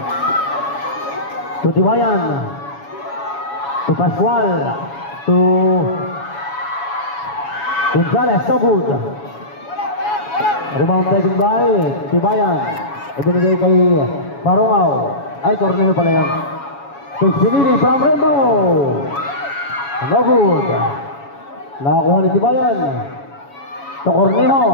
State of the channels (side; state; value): right; late; 7.2 ms